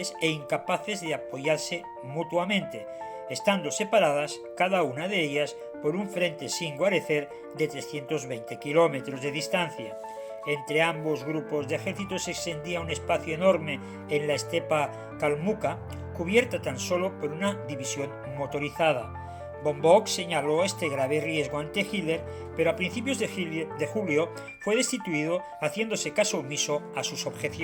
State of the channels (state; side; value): identical; both; correlation 1.00